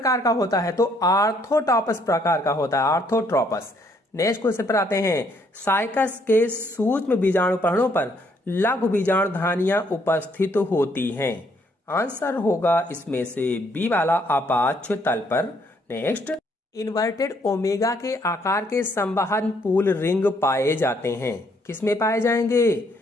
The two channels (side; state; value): both; normal; correlation 0.69